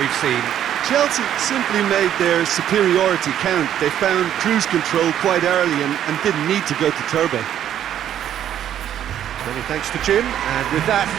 seen? Chelsea simply made their superiority count. They found cruise control quite early and didn't need to go to turbo. Many thanks to Jim, and with that,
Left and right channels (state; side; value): quieter; left; 10.6 dB